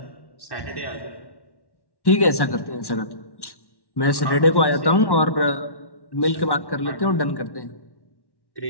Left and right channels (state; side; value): late; right; 1.1 ms